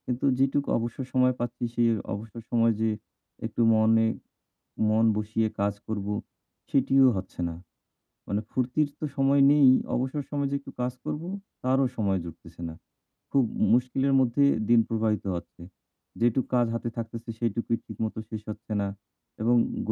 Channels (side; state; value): both; identical; correlation 1.00